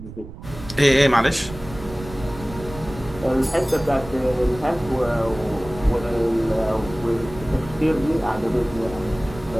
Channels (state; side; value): noise; right; rumble, 14 dB below the sound